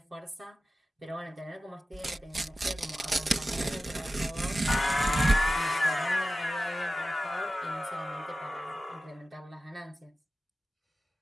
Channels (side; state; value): both; normal; correlation 0.94